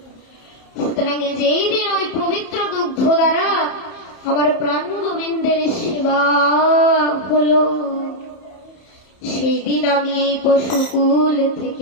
সুতরাং যেই দিন ওই পবিত্র দুগ্ধ দ্বারা আমার প্রাণ গোবিন্দের সেবা হলো, সেই দিন আমি এই পশুকুল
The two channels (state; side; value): late; right; 31 ms